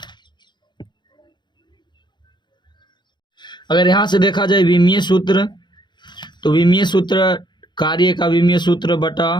यहाँ से देखा जाए विमीय सूत्र, तो विमीय सूत्र कार्य का विमीय सूत्र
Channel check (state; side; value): late; right; 0.22 ms